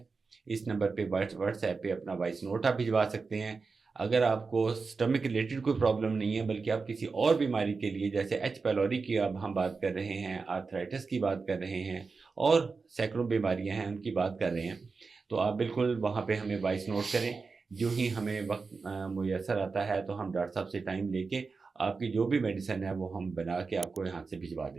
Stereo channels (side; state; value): left; quieter; 4.5 dB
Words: اس نمبر پہ واٹس ایپ پہ اپنا وائس نوٹ آپ بھجوا سکتے ہیں. اگر آپ کو سٹمک ریلیٹڈ کوئی پرابلم نہیں ہے بلکہ آپ کسی اور بیماری کے لیے جیسے ایچ پیلوری کی اب ہم بات کر رہے ہیں، آرتھرائٹس کی بات کر رہے ہیں اور سینکڑوں بیماریاں ہیں ان کی بات کر رہے ہیں، تو آپ بالکل وہاں پہ ہمیں وائس نوٹ کریں. جو ہی ہمیں وقت میسر آتا ہے تو ہم ڈاکٹر صاحب سے ٹائم لے کے آپ کی جو بھی میڈیسن ہے وہ ہم بنا کے آپ کو یہاں سے بھجوا